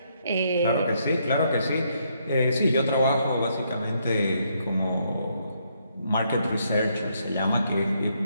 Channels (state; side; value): inverted; both; correlation -0.74